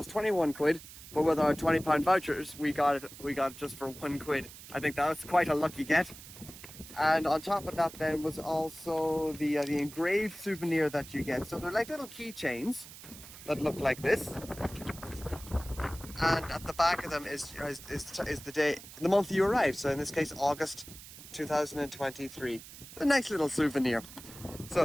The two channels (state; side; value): noise; right; hiss, 16 dB below the sound